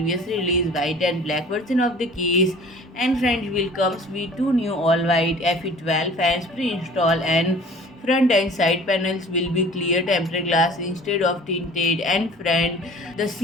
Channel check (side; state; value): both; normal; correlation 0.46